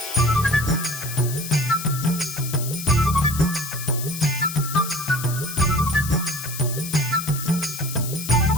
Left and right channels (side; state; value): left; noise; hiss, 8 dB below the sound